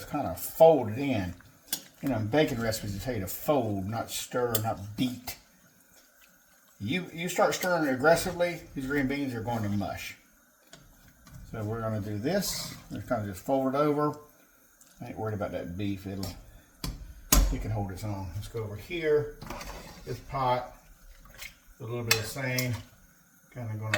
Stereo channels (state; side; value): identical; both; correlation 1.00